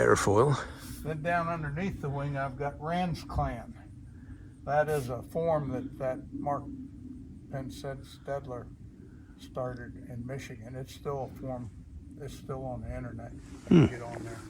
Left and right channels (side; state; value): both; identical; correlation 1.00